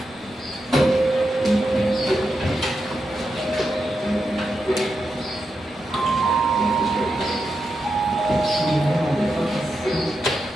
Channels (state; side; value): normal; both; correlation 0.87